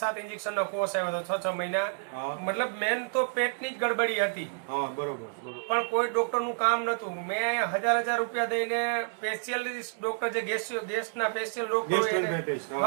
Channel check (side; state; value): left; silent; 58 dB below the other